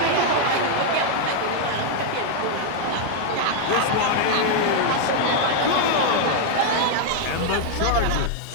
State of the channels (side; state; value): both; different; correlation 0.00